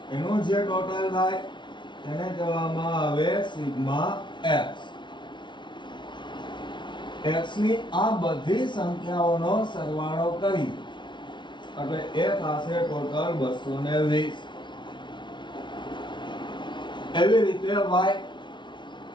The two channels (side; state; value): right; late; 0.23 ms